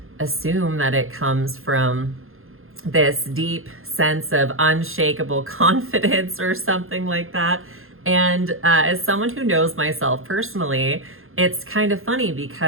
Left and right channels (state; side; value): late; left; 0.61 ms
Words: assume that it comes from this deep sense of unshakable confidence or something like that. And as someone who knows myself personally, it's kind of funny